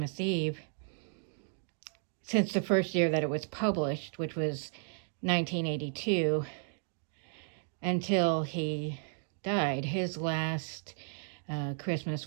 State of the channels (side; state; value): left; silent; digital silence